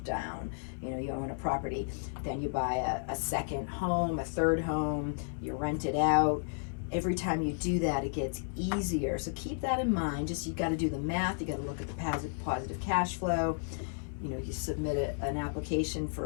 down, you own a property, then you buy a second home, a third home, you rent it out. Every time you do that, it gets easier. So keep that in mind. You got to do the math. You got to look at the positive cash flow. You submit an application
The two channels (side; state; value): right; silent; 56 dB below the other